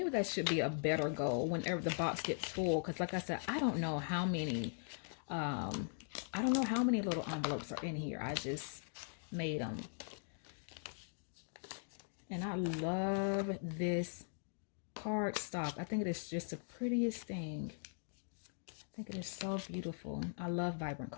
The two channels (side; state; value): right; silent; digital silence